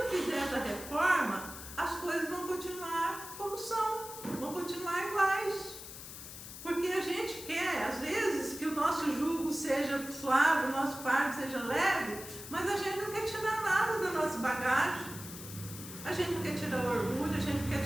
fizer essa reforma, as coisas vão continuar como são, vão continuar iguais. Porque a gente quer, às vezes, que o nosso jugo seja suave, o nosso fardo seja leve, mas a gente não quer tirar nada da nossa bagagem. A gente não quer tirar o orgulho, a gente não quer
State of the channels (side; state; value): left; noise; hiss, 12 dB below the sound